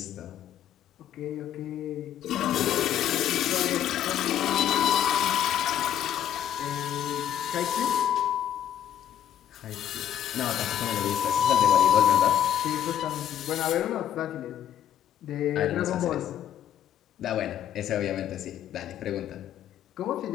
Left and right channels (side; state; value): right; quieter; 10.3 dB